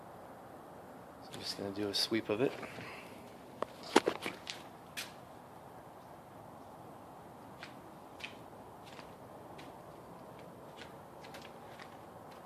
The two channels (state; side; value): identical; both; correlation 1.00